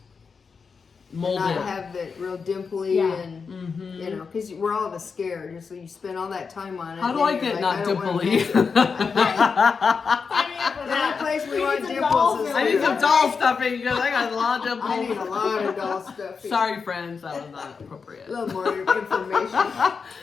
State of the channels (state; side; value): quieter; right; 5.4 dB